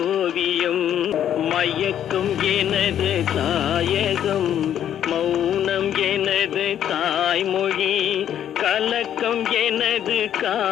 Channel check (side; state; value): right; quieter; 10.2 dB